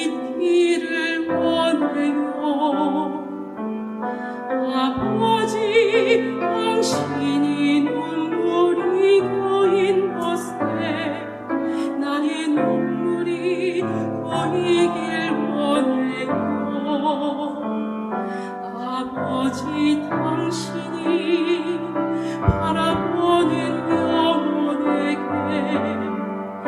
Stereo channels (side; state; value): both; identical; correlation 1.00